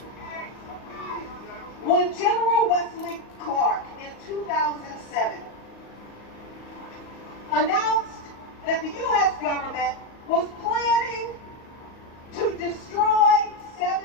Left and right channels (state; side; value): late; right; 38 ms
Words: When General Wesley Clark in 2007 announced that the U.S. government was planning to destroy 7